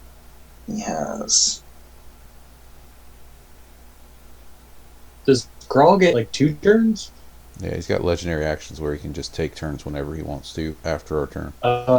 He has... Does Grawl get like 2 turns? Yeah, he's got legendary actions where he can just take turns whenever he wants to after our turn.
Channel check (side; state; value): both; identical; correlation 1.00